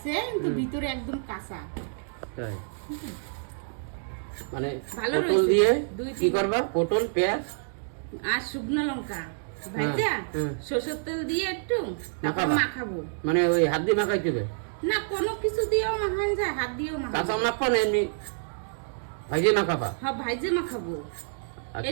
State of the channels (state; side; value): silent; left; digital silence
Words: কিন্তু ভিতরে একদম কাঁচা। তাই মানে পটল দিয়ে কি করবা? পটল, পেঁয়াজ আর শুকনো লঙ্কা ভাজা সরষের তেল দিয়ে একটু মাখাবো। মানে ওই হাত দিয়ে মাখাইতে হবে না, কোনো কিছু দিয়েও মাখান যায়, হাত দিয়েও মাখাবো। কাঁচা মাখবা না এমনি ভাজে মাখাবা? হ্যাঁ, ভাজে মাখাবো।